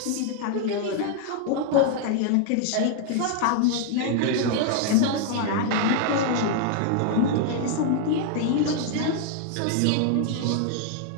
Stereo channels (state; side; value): different; both; correlation 0.00